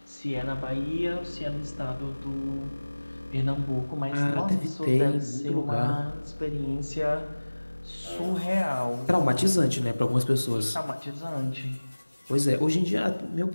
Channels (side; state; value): both; inverted; correlation -1.00